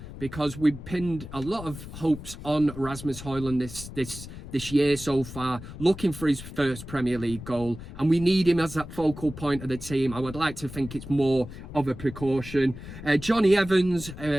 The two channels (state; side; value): noise; left; rumble, 12 dB below the sound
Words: because we've pinned a lot of hopes on Rasmus Højlund this year so far, looking for his first Premier League goal, and we need him as that focal point of the team. I would like to think it's more of a precaution. Johnny Evans